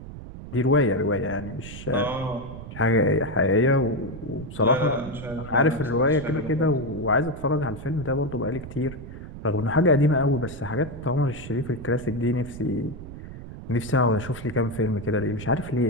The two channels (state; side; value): noise; right; rumble, 12 dB below the sound